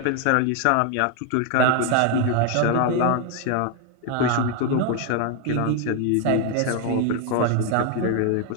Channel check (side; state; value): both; different; correlation 0.01